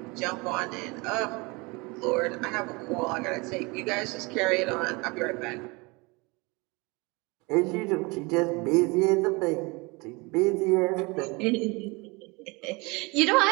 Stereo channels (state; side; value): quieter; left; 26.6 dB